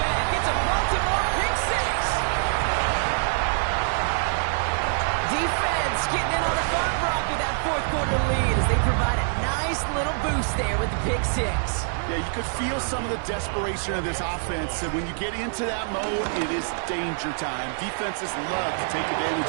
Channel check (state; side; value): silent; left; digital silence